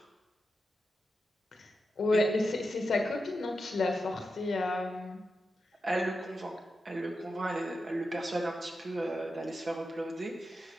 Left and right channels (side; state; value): both; normal; correlation 0.89